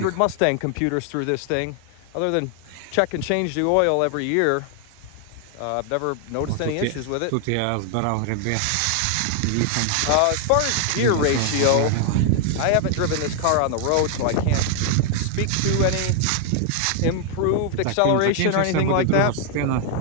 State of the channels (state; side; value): different; both; correlation 0.00